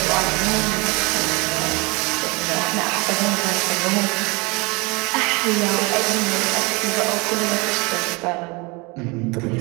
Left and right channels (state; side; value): quieter; left; 27.0 dB